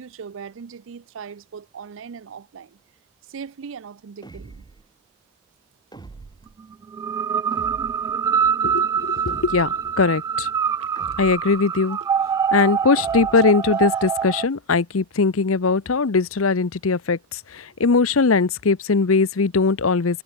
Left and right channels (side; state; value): both; normal; correlation 0.04